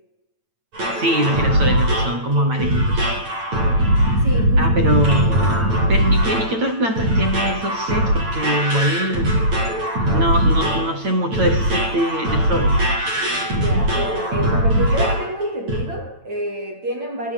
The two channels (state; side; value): late; left; 9.0 ms